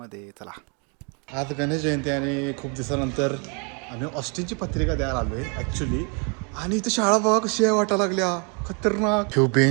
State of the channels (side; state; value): left; quieter; 35.6 dB